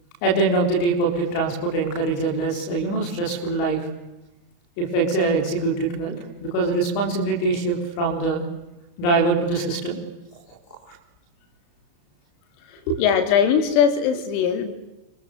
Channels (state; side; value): late; right; 35 ms